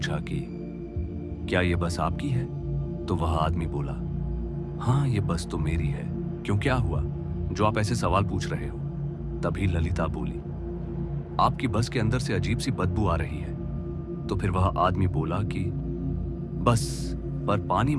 कि क्या ये बस आपकी है? तो वह आदमी बोला, हाँ ये बस तो मेरी है। क्यों, क्या हुआ जो आप ऐसे सवाल पूछ रहे हो? तभी ललिता बोली, आपकी बस के अंदर से अजीब सी बदबू आ रही है। तो फिर वह आदमी बोला कि बस पर पानी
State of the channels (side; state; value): both; identical; correlation 1.00